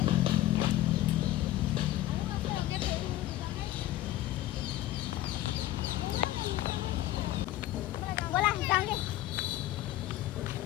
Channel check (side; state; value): right; quieter; 14.8 dB